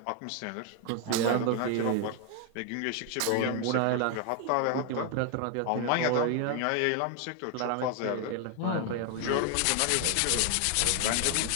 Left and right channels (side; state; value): both; different; correlation 0.00